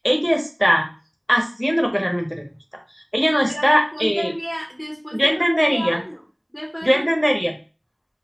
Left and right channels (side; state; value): both; identical; correlation 1.00